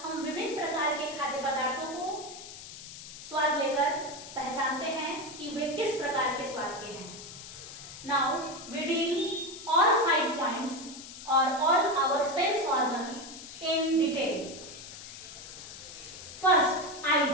हम विभिन्न प्रकार के खाद्य पदार्थों को स्वाद लेकर पहचानते हैं कि वे किस प्रकार के स्वाद के हैं। Now we deal all 5 points और all our sense organs in detail. First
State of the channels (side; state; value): left; noise; hiss, 13 dB below the sound